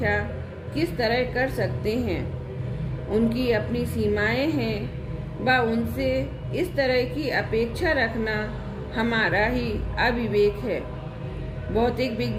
किस तरह कर सकते हैं? उनकी अपनी सीमाएं हैं व उनसे इस तरह की अपेक्षा रखना हमारा ही अविवेक है। भौतिक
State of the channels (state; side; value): identical; both; correlation 1.00